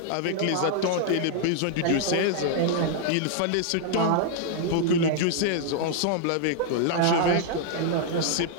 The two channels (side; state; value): both; different; correlation 0.00